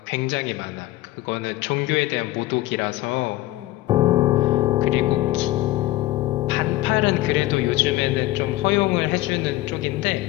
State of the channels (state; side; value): quieter; right; 17.0 dB